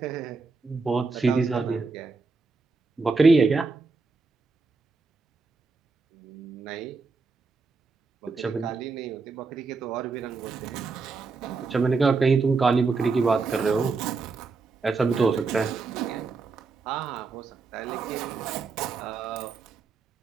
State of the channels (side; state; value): left; quieter; 4.3 dB